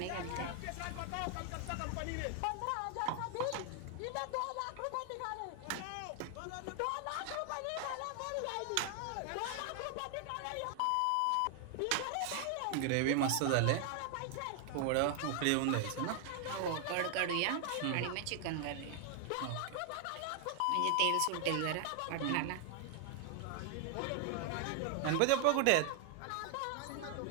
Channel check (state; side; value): different; both; correlation 0.00